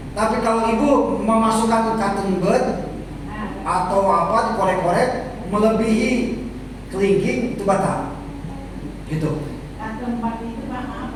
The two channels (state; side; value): identical; both; correlation 1.00